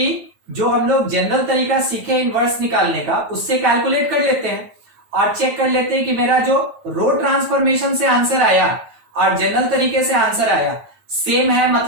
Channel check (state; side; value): late; left; 9.1 ms